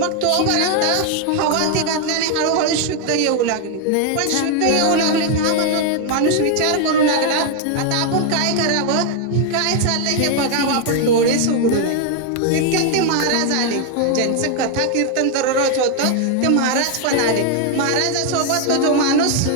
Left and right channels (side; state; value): both; different; correlation 0.01